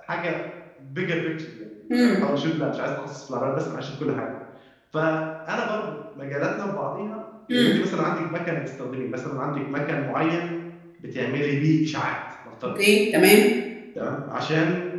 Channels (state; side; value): identical; both; correlation 1.00